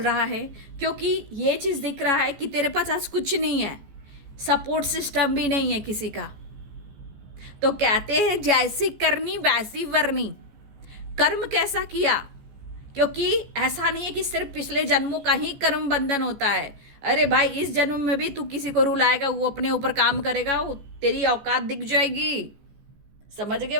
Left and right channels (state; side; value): late; left; 14 ms